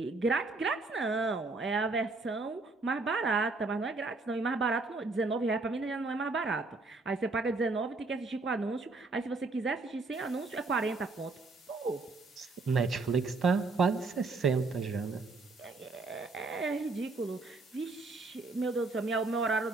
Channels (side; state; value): left; quieter; 3.6 dB